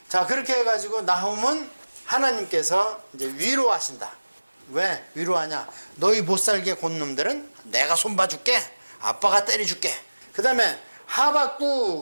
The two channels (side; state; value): both; inverted; correlation -1.00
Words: 자, 그렇게 해가지고 나훔은 하나님께서 이제 위로하신다. 왜 위로하냐? 너희 못살게 곤 놈들은 내가 손봐줄게. 아빠가 때려줄게. 그 다음에